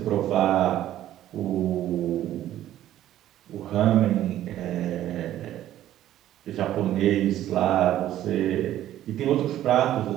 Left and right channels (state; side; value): quieter; left; 12.8 dB